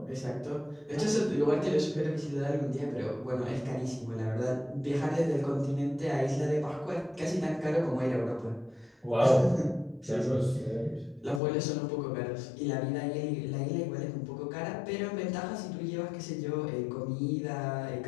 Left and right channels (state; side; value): drops out; right; at 11.4 s